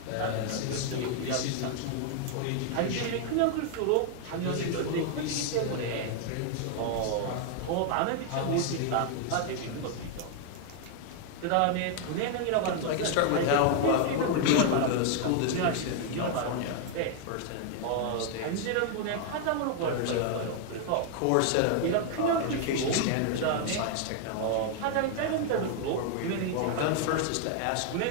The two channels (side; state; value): both; different; correlation 0.00